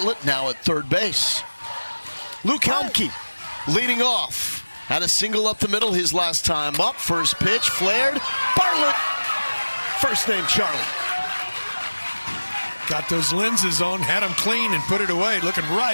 now at third base. Luke Helmke leading off. Had a single up the middle his last time up. First pitch flared. Bartlett First name Charlie. Got those lenses on, had them clean and put it away, looking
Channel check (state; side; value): inverted; both; correlation -1.00